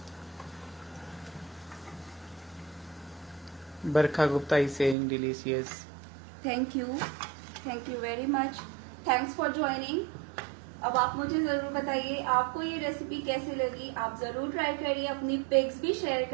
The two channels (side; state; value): left; drops out; at 5.0 s